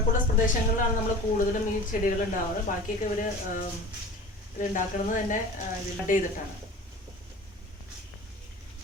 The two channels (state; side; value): normal; both; correlation 0.38